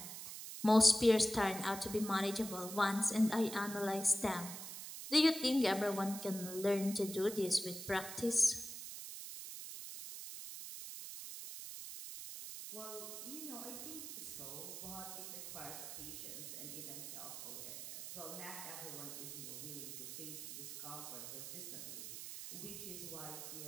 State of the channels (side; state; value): right; noise; hiss, 8 dB below the sound